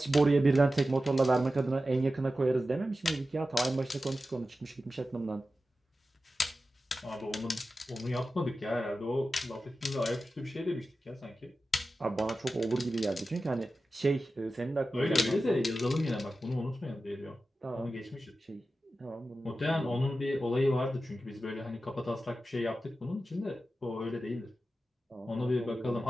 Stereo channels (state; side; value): normal; both; correlation 0.93